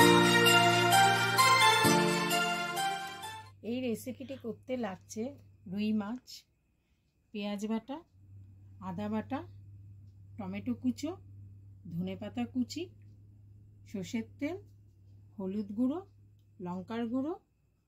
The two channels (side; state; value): both; identical; correlation 1.00